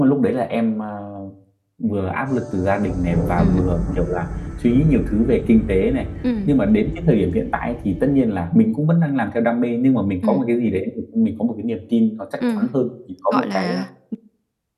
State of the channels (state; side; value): identical; both; correlation 1.00